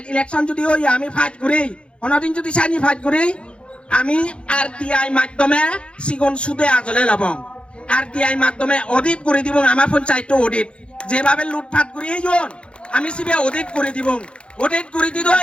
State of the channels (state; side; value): late; right; 0.057 ms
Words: ইলেকশন যদি ওই আমি ফাইট ঘুরি অনদিন যদি চাইনি ফাইট ঘুরি আমি RTI মাধ্যমে সিগন সুদে আজলে লব RTI মাধ্যমে অডিট করে দিব আমার পঞ্চায়েত অডিট যেভাবে লুটপাট করি আমি সিবে অডিট করে দিব অডিট করে